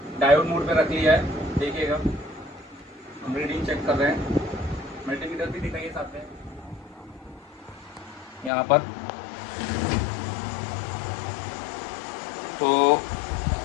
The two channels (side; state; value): right; drops out; at 8.5 s